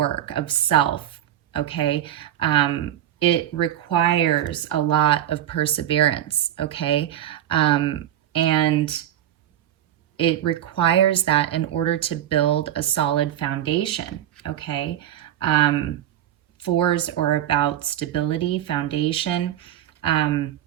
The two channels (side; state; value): left; quieter; 11.7 dB